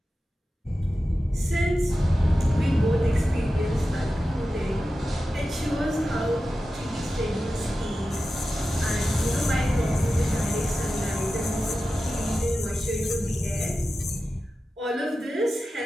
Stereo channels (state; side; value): normal; both; correlation 0.93